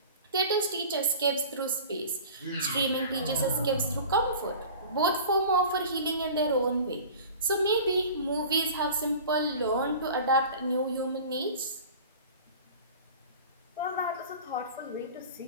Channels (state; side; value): inverted; both; correlation -0.39